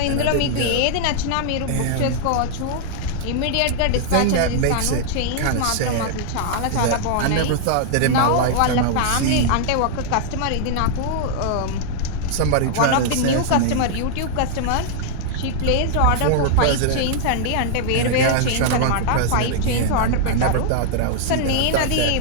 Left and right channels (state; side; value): different; both; correlation -0.01